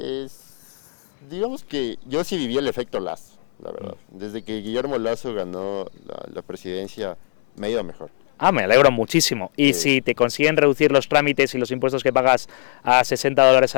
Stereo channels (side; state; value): right; silent; digital silence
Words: Digamos que yo sí viví el efecto Lazo, la verdad. Desde que Guillermo Lazo ganó la presidencia, me ha ido mejor. Ah, me alegro muchísimo. ¿Y si te consiguen reducir los trámites y los impuestos que pagas a $60